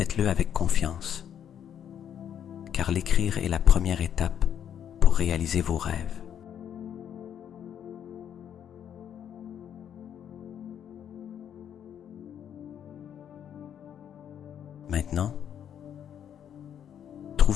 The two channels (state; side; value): quieter; right; 9.2 dB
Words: avec confiance, car l'écrire est la première étape pour réaliser vos rêves. Maintenant,